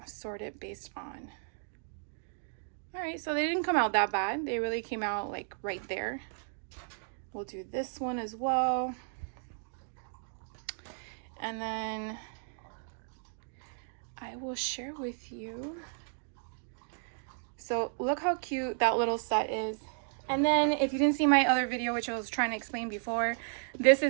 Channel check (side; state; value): left; silent; digital silence